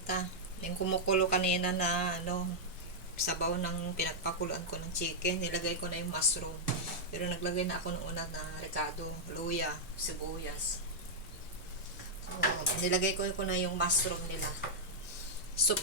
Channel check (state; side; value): normal; both; correlation -0.05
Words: Yung kumukulo kanina na sabaw ng pinagpakuluan ko ng chicken, nilagay ko na yung mushroom. Pero naglagay na ako ng una na ricado, luya, sibuyas. So, nilagay ko na yung mushroom nila. Soup